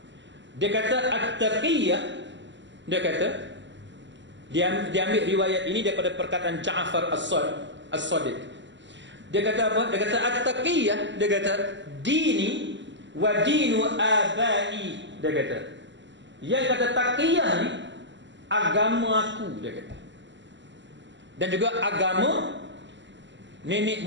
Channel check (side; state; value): left; late; 0.53 ms